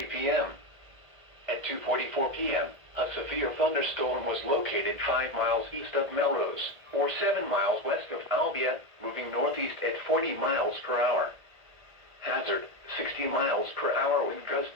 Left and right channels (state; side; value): late; left; 1.9 ms